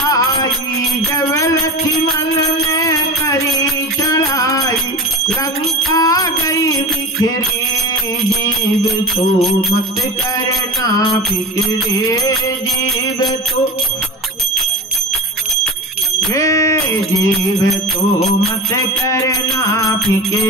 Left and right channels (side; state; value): both; normal; correlation 0.30